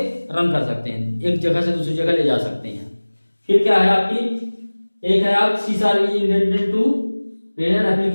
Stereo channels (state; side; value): inverted; both; correlation -1.00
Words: रन कर सकते हैं, एक जगह से दूसरी जगह ले जा सकते हैं। फिर क्या है आपकी, एक है आप C sharp is intended to run